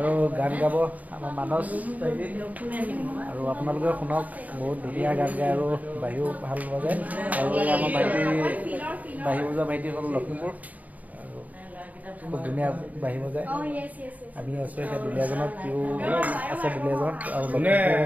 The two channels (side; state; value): left; late; 0.074 ms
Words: গান গাব আমাৰ মানস ভাইটি। আৰু আপোনালোকে শুনক, বহুত ধুনীয়া গান গায় আৰু বাঁহীও ভাল বজায়। আৰু আমাৰ ভাইটি বাঁহী বজোৱা ভাইটি হ'ল লখিমপুৰ আৰু খুব ধুনীয়া বাঁহী বজায়। আমি আছোঁ এতিয়া দুলীয়াজনত, সিও আছে দুলীয়াজনত আৰু